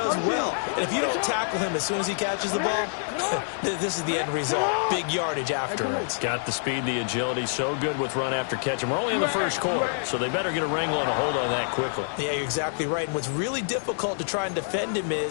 well. And if you don't tackle him as soon as he catches the ball, this is the end result. Big yardage afterwards. Got the speed, the agility, so good with run after catch. And we're only in the first quarter, so they better get a wrangle and a hold on that quickly. Yeah, you're exactly right. And what's really difficult to try and defend him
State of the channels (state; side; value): silent; right; digital silence